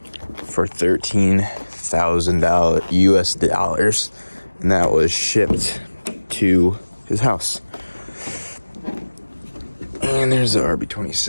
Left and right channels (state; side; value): inverted; both; correlation -1.00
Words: $13,000 US dollars, and that was shipped to his house. And there's the